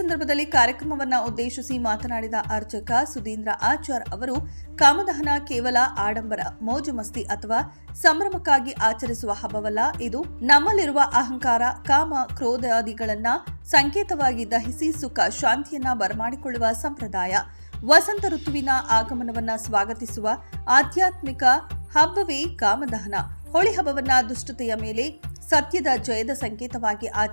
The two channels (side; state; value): both; inverted; correlation -1.00